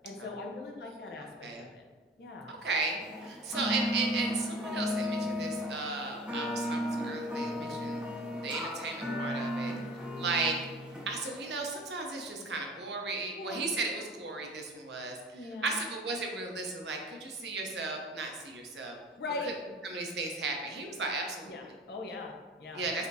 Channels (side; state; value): both; normal; correlation 0.42